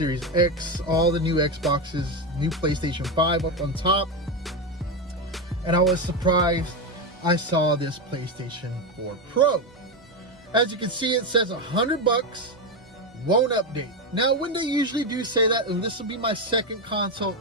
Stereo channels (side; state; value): both; normal; correlation 0.11